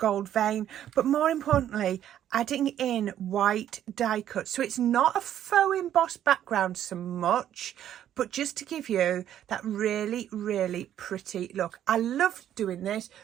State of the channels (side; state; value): left; quieter; 10.9 dB